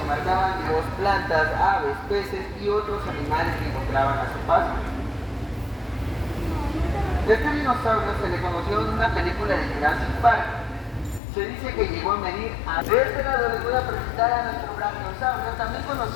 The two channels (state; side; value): drops out; right; at 11.2 s